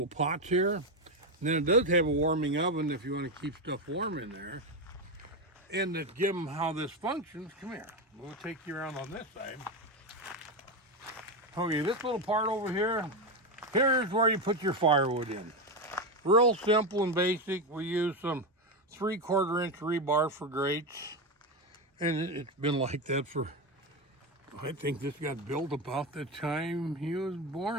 pots here. And then it does have a warming oven if you want to keep stuff warm in there. And to give them how this functions, come here. We'll take you around on this side. Okay, this little part over here, here's where you put your firewood in. Real simple and basic. We use some 3/4 inch rebar for grates. And it's been like that for, I think this got built about the time he was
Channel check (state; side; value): normal; both; correlation 0.13